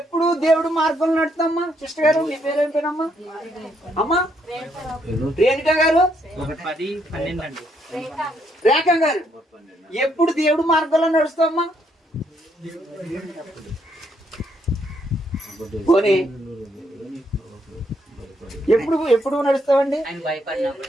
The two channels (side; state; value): both; normal; correlation 0.73